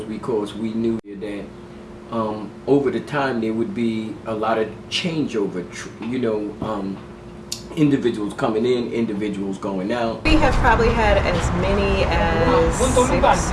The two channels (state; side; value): identical; both; correlation 1.00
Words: because we knew that over the time there would be a lot of changeover. Individuals coming in, individuals going out. We have probably had as many as 6